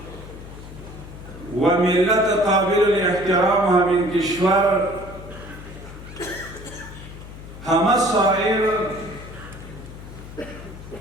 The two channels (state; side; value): noise; left; hum, 14 dB below the sound